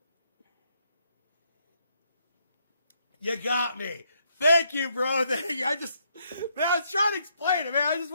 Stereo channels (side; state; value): both; inverted; correlation -0.74